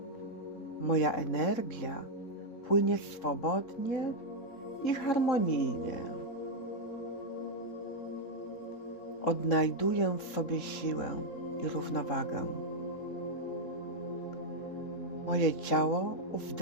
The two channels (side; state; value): right; late; 3.8 ms